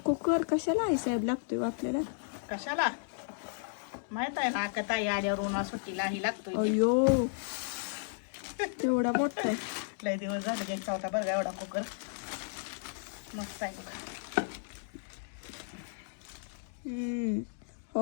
कुकर कशाला आई साहेब लागतोय आपल्याला? कशाला माहित आहे ना, का ताई आल्यावर उन्हा सुट्टीला ही लागतोय. अयो एवढा मोठा आहे. लय दिवस झाले घ्यायचा होता बरं का एवढा कुकर. मस्त आहे बघा.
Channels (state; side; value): silent; right; digital silence